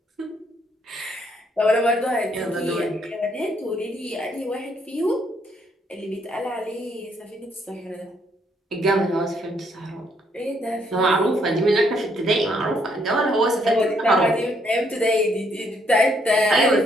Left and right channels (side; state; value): both; normal; correlation 0.71